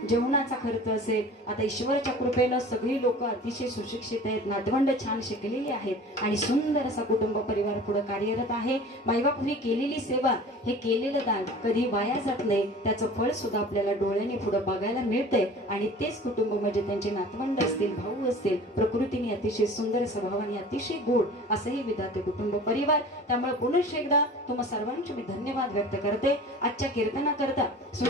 जेवणाचा खर्च असेल. आता ईश्वराच्या कृपेनं सगळी लोक अतिशय सुशिक्षित आहेत, नातवंड छान शिकलेली आहेत आणि सुंदर असा कुटुंब परिवार पुढे कार्यरत आहे. मायबापूंनी केलेली सेवा, हे केलेलं दान कधी वाया जात नाही. त्याचं फळ सुद्धा आपल्याला डोळ्याने पुढे बघायला मिळतंय. आणि तेच कुटुंब म्हणजे त्यांचे नातवंड असतील, भाऊ असतील, प्रकृतीने अतिशय सुंदर स्वभावाने अतिशय गोड असंही विधाते कुटुंब परिवार. त्यामुळे पुन्हा एकदा तुम्हा सर्वांचे मी धन्यवाद व्यक्त करते. आजच्या कीर्तनाकरता,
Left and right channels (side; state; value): both; normal; correlation 0.41